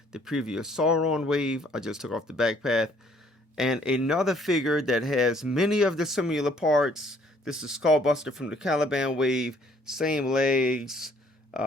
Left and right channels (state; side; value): normal; both; correlation 0.62